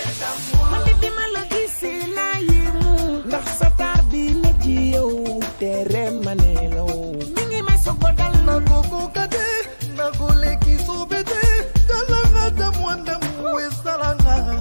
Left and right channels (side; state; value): both; inverted; correlation -1.00